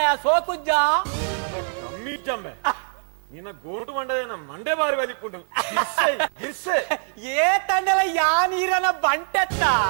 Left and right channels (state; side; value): silent; left; 63 dB below the other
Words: ಸೋಕುಜ್ಜ ಕಮ್ಮಿ ಜಮ್ಮೆ ನಿನ್ನ ಗೋಟು ಮಂಡದೇನ ಮಂಡೆ ಬಾರಿ ಬಲಿಪುಂಡು ಗಿರ್ಸೆ ಏ ತಂಡಲ ಯಾ ನೀರನ ಬಂಟೆತ್ತ